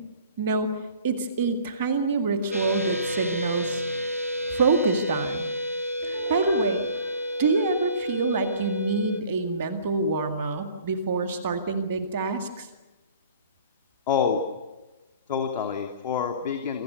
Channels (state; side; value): inverted; both; correlation -0.51